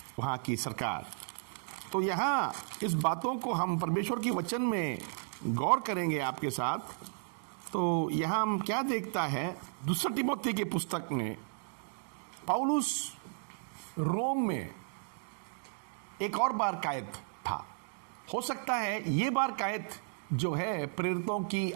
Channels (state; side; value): silent; left; digital silence